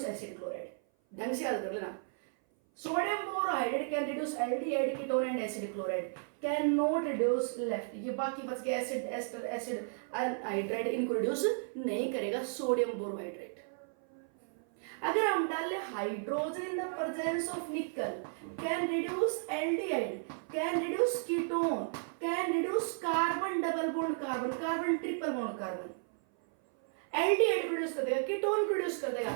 acid chloride। ढंग से याद कर लेना। Sodium borohydride can reduce aldehyde ketone and acid chloride, can not reduce left, ये बाकी बच गए acid ester acid anhydride, इनको रिड्यूस नहीं करेगा सोडियम बोरोहाइड्राइड। अगर हम डाल ले hydrogen in the presence of निकल, can reduce aldehyde, can reduce ketone, can reduce carbon double bond carbon, carbon triple bond carbon, aldehyde produce कर देगा, कीटोन प्रोड्यूस कर देगा।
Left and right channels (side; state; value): left; silent; 55 dB below the other